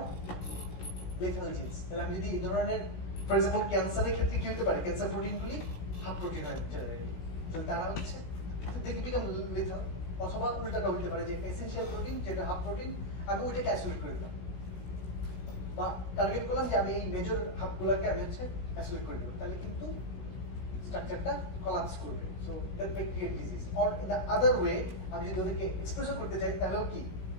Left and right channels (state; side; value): late; right; 17 ms